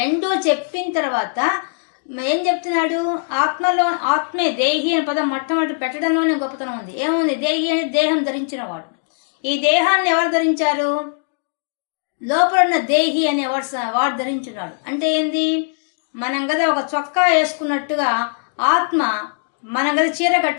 చెప్పిన తర్వాత ఏం చెప్తున్నాడు, ఆత్మలో, ఆత్మే దేహి అనే పదం మొట్టమొదటి పెట్టడంలోనే గొప్పతనం ఉంది. ఏముంది, దేహి అంటే దేహం ధరించిన వాడు. ఈ దేహాన్ని ఎవరు ధరించారు, లోపల ఉన్న దేహి అనే వాడు ధరించున్నాడు. అంటే ఏంది, మనం కదా ఒక చొక్కా వేసుకున్నట్టుగా ఆత్మ, మనం కదా చీర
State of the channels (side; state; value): right; silent; digital silence